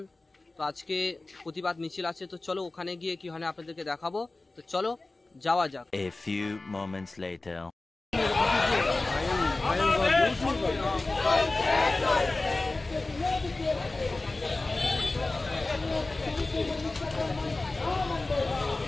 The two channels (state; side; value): quieter; right; 3.2 dB